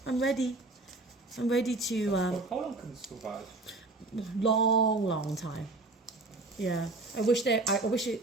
I'm ready to. How long can it survive? long time. Yeah, I wish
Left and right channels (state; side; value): quieter; left; 3.2 dB